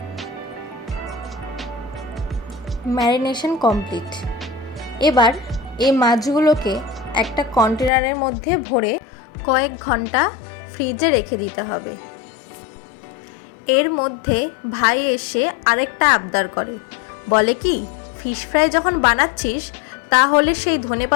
Marination complete. এবার এই মাছগুলোকে একটা কন্টেনারের মধ্যে ভরে কয়েক ঘন্টা ফ্রিজে রেখে দিতে হবে। এর মধ্যে ভাই এসে আরেকটা আবদার করে, বলে কি ফিশ ফ্রাই যখন বানাচ্ছিস তাহলে সেই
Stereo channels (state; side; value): drops out; right; at 7.9 s